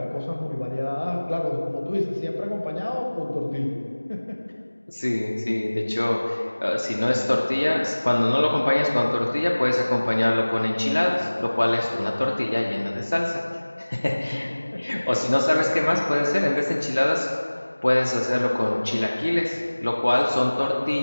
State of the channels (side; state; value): both; inverted; correlation -1.00